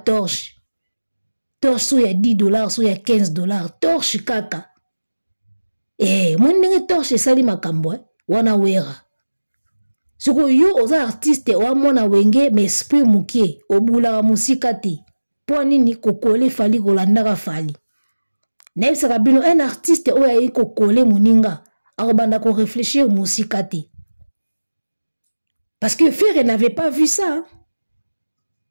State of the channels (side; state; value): both; inverted; correlation -1.00